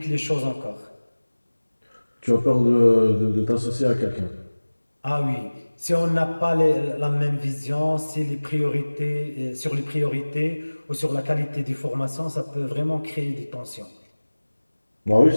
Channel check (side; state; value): both; inverted; correlation -1.00